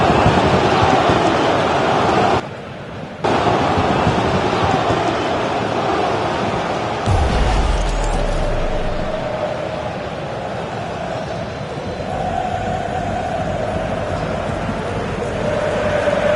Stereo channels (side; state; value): both; identical; correlation 1.00